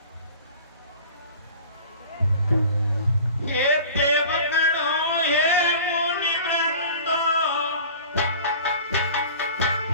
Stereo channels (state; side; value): inverted; both; correlation -0.42